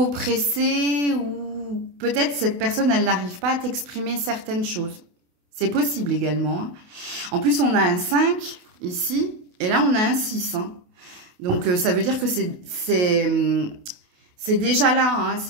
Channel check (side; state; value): left; late; 28 ms